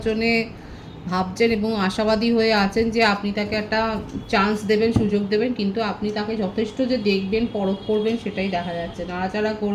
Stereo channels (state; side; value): identical; both; correlation 1.00